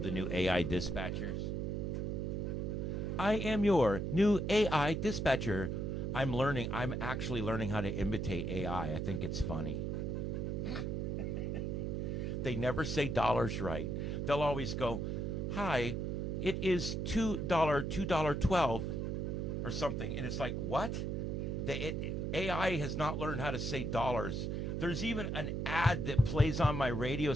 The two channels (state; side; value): noise; right; hum, 1 dB below the sound